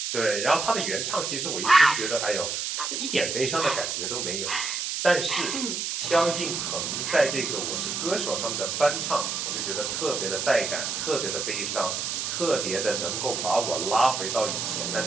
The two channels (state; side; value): noise; right; hiss, 2 dB below the sound